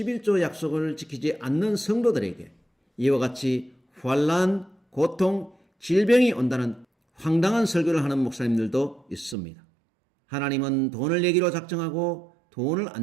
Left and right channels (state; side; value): drops out; left; at 9.3 s